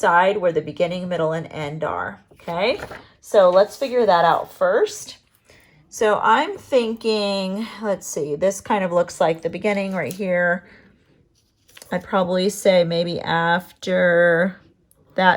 where the beginning, middle, and end are. Okay, so let's figure that out first. So I'm thinking, let's see, this kind of looks like the beginning right here. I'd probably say maybe after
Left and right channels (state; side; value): identical; both; correlation 1.00